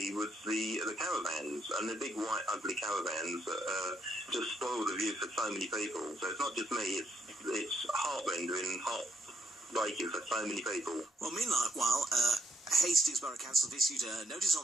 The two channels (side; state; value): both; normal; correlation 0.75